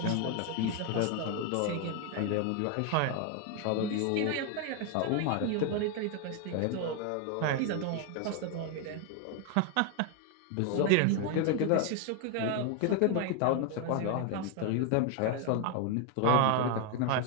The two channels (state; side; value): different; both; correlation 0.01